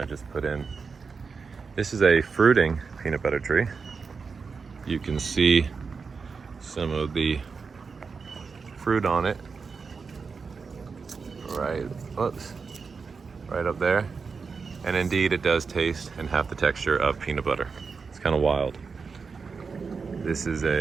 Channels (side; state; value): left; quieter; 5.1 dB